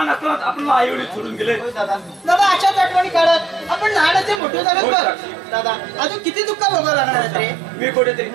असताना आपल्याला आई वडील सोडून गेले. दादा अशाच आठवणी काढत आपण लहानाचे मोठे झाले बघ दादा अजून किती दुःख भोगावं लागणार आहेत रे. मी कुठेतरी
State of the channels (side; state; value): left; drops out; at 4.4 s